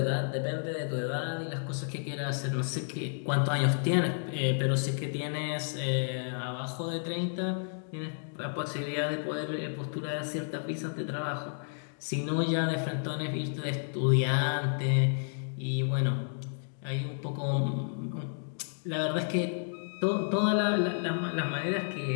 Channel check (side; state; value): right; silent; digital silence